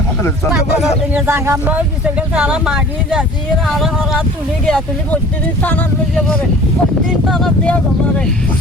খাবে তারা মাগি যাচ্ছি আর তুলি গিয়া তুলি প্রতিদিন টানার লইয়া পড়ে প্রতিদিন টানার দেওয়া জমারে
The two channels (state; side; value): normal; both; correlation 0.46